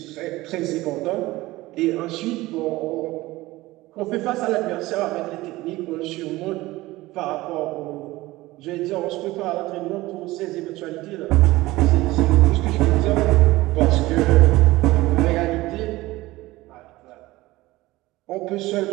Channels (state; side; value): quieter; left; 18.8 dB